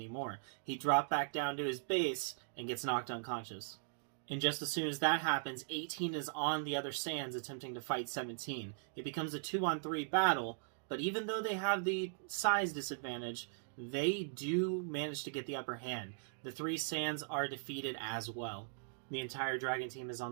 He dropped back down to his base and gets knocked unconscious. And just as soon as that happens, 18 is on the other Saiyans attempting to fight 17. It becomes a 2-on-3 battle, but even though they have the size disadvantage, they do manage to get the upper hand. The three Saiyans are defeated as well. The entire Dragon Team is on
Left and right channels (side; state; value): left; silent; digital silence